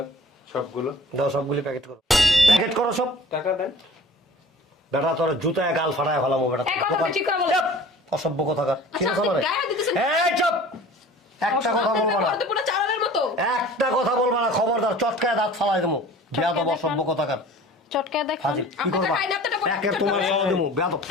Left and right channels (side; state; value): both; normal; correlation 0.45